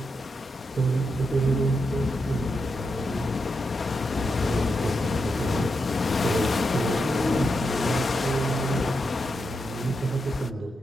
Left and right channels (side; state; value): both; normal; correlation 0.85